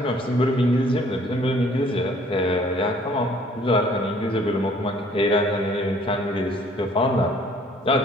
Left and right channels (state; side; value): normal; both; correlation 0.58